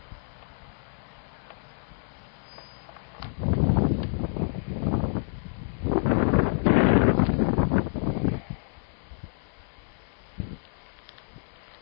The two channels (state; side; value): silent; right; 59 dB below the other